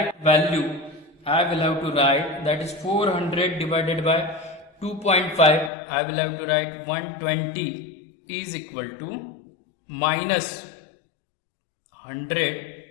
value. I will have to write, that is 400 divided by 2.5. I will have to write 120 is equal to minus 100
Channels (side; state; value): right; drops out; at 5.7 s